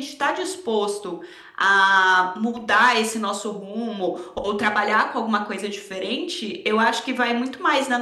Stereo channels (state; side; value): identical; both; correlation 1.00